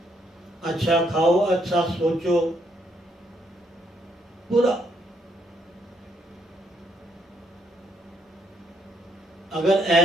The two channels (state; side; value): normal; both; correlation 0.73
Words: अच्छा खाओ, अच्छा सोचो, पूरा। अगर